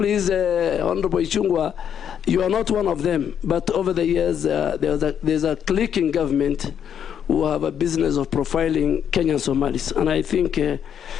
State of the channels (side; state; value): right; quieter; 8.6 dB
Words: Honorable Ichung'wah, you are not one of them. But over the years, there's a clique in government who have a business of profiling Kenyan Somalis, and I think